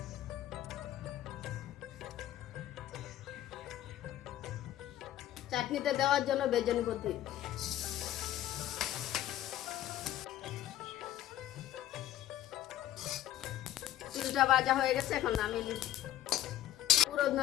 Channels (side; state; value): right; quieter; 12.8 dB